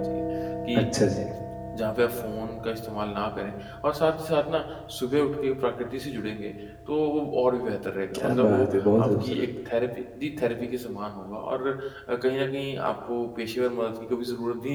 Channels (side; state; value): both; identical; correlation 1.00